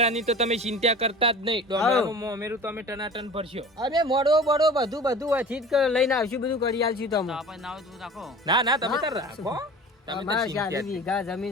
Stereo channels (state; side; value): normal; both; correlation 0.39